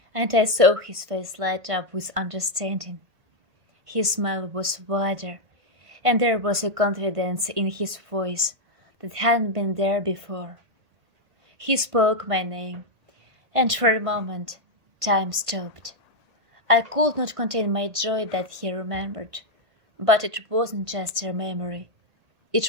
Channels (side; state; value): left; late; 1.5 ms